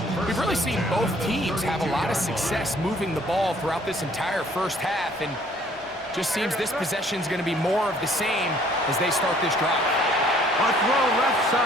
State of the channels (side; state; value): both; normal; correlation 0.59